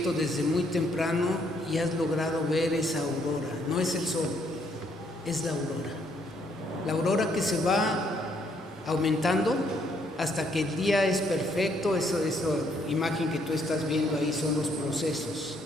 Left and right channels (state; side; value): normal; both; correlation 0.70